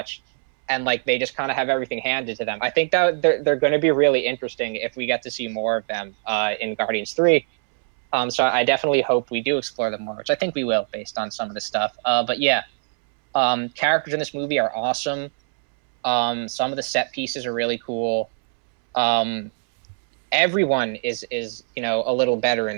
And like, they just kind of have everything handed to them. I think that they're going to be really interesting if we get to see more of them in Guardians 3. So I definitely hope we do explore them more, which I think we will based on some of the stuff. But yeah, characters in this movie are awesome. Some of the set pieces are really cool. Everyone is a little better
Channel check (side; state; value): left; silent; 64 dB below the other